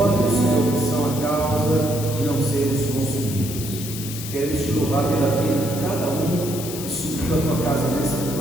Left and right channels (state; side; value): noise; left; hiss, 9 dB below the sound